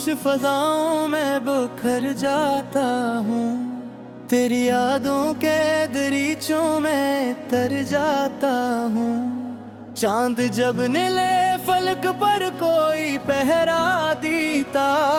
फजाओं में बिखर जाता हूँ, तेरी यादों के दरीचों में तर जाता हूँ। चांद जब नीले फलक पर कोई पहरा देता,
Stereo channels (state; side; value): identical; both; correlation 1.00